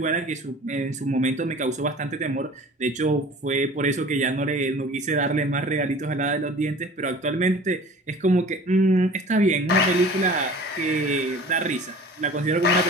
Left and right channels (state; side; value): normal; both; correlation 0.44